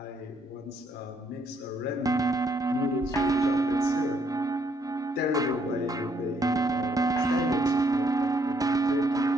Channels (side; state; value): both; normal; correlation 0.71